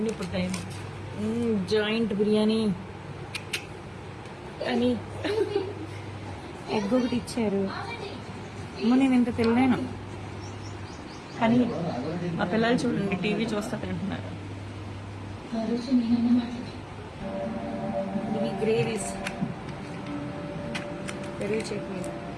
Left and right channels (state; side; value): identical; both; correlation 1.00